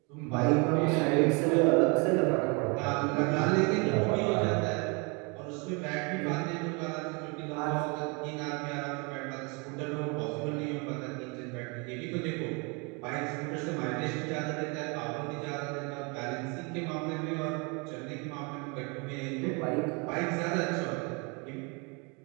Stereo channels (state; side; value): quieter; left; 31.4 dB